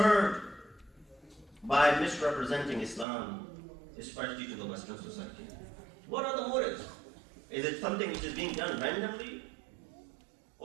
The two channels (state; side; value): drops out; left; at 3.1 s